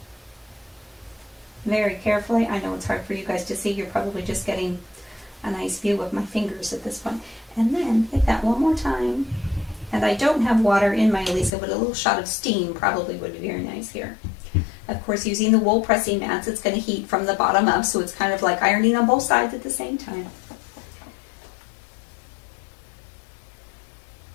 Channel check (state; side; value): drops out; right; at 11.5 s